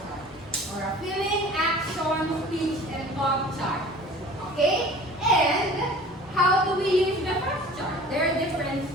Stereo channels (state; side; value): normal; both; correlation 0.44